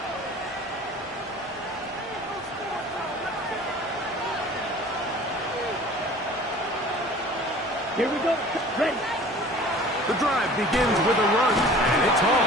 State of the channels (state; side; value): normal; both; correlation 0.45